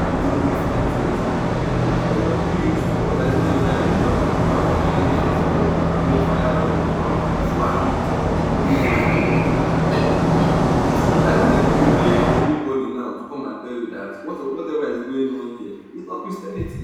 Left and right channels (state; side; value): identical; both; correlation 1.00